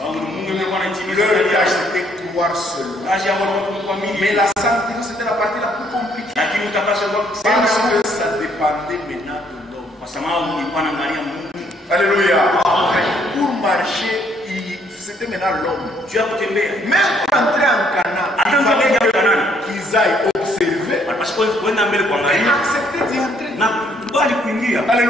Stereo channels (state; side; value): normal; both; correlation 0.67